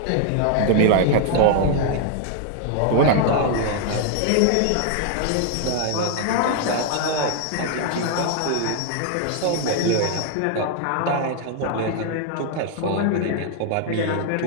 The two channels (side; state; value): both; different; correlation 0.00